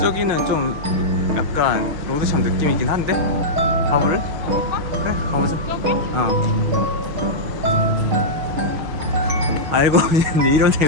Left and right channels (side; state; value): left; late; 6.4 ms